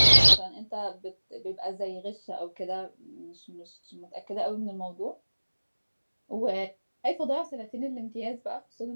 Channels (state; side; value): inverted; both; correlation -1.00